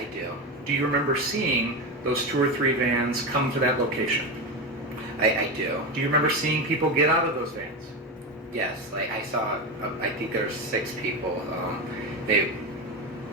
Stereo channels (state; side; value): normal; both; correlation 0.17